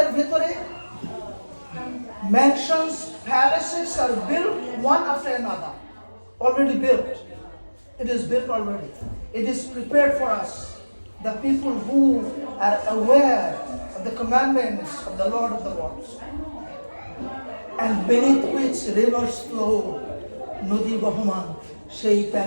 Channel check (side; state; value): both; inverted; correlation -1.00